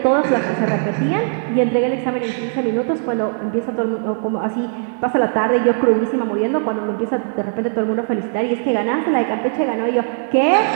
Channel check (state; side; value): silent; left; 63 dB below the other